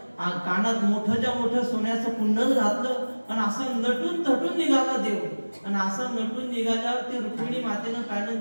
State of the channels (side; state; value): both; inverted; correlation -1.00